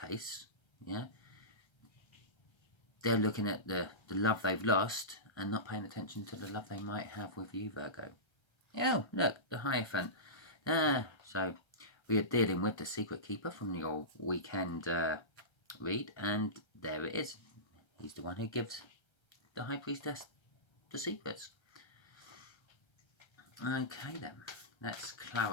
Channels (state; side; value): late; right; 1.3 ms